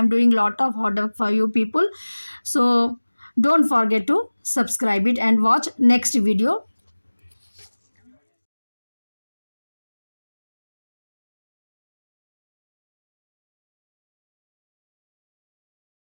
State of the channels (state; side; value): inverted; both; correlation -1.00